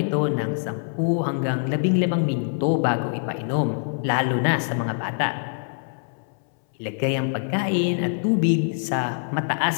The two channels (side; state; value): right; silent; 62 dB below the other